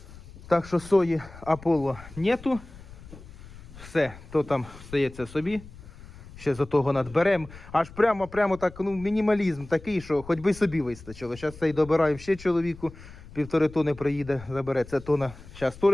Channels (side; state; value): left; noise; rumble, 18 dB below the sound